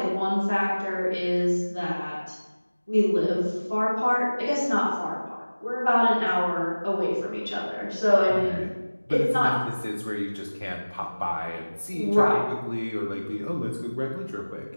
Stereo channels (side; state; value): both; inverted; correlation -1.00